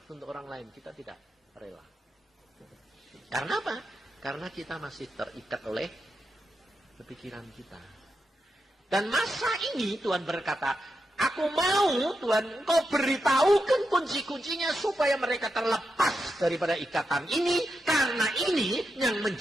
untuk orang lain, kita tidak rela. Karena apa? Karena kita masih terikat oleh kepikiran kita. Dan masa ini Tuhan berkata, aku mau Tuhan kau beritahukan kunci-kuncinya supaya mereka terlepas daripada ikatan ini. Karena ini yang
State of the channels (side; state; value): both; normal; correlation 0.86